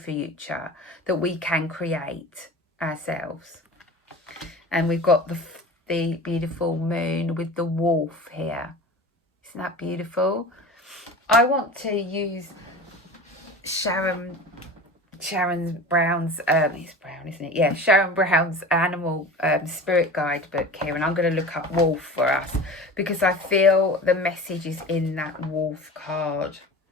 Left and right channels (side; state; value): both; normal; correlation 0.35